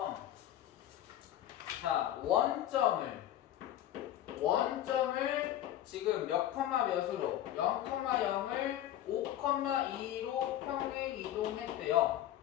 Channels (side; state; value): right; quieter; 12.4 dB